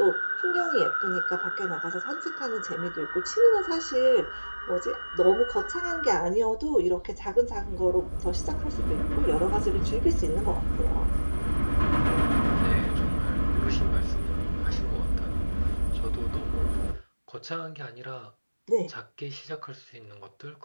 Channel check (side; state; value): both; inverted; correlation -1.00